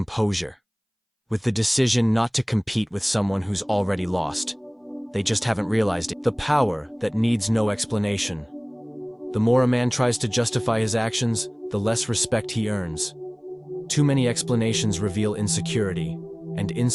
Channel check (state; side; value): identical; both; correlation 1.00